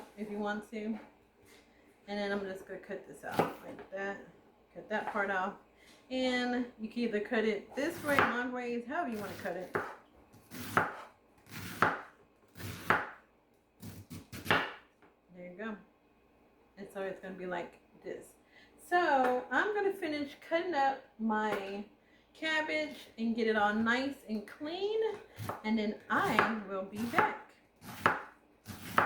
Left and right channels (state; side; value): identical; both; correlation 1.00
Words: if you want to. And then I'm just going to cut this out like that. Cut that part off. And you can either cut it this way, long ways, however you want to cut it. There you go. And so it's going to be like this. So I'm going to finish cutting up my cabbage and get it all nice and clean, and then I will be back.